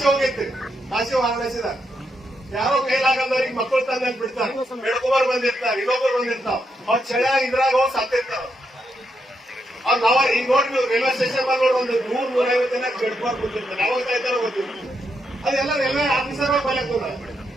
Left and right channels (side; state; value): both; normal; correlation 0.81